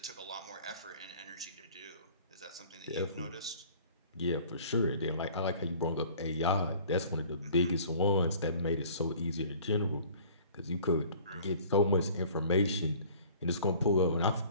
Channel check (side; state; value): both; inverted; correlation -0.50